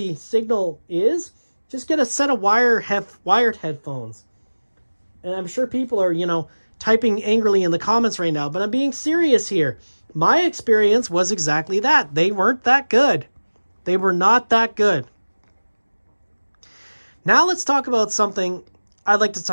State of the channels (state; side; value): inverted; both; correlation -1.00